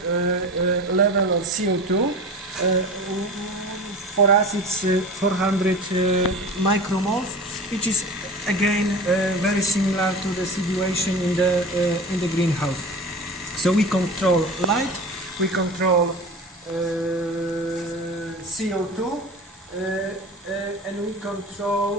level of CO2. For us it's 400 micromoles, which is again very similar to the situation in the greenhouse. So we control light, we control CO2, and we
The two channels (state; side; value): normal; both; correlation 0.34